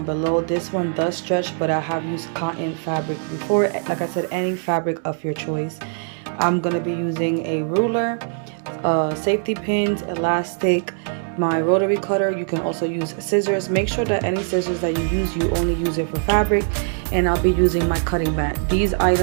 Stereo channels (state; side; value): silent; left; digital silence